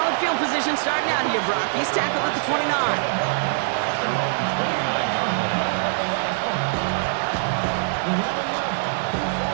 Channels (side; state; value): left; silent; digital silence